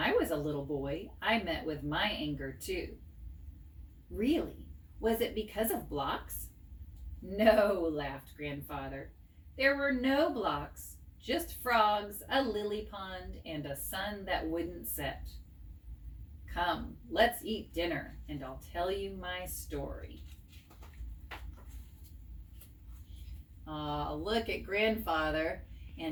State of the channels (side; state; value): both; identical; correlation 1.00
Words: was a little boy, I met with my anger too. Really? Was it because of blocks? No, laughed Grandfather. There were no blocks, just frogs, a lily pond, and a sun that wouldn't set. Come, let's eat dinner, and I'll tell you my story. Look at Grandfather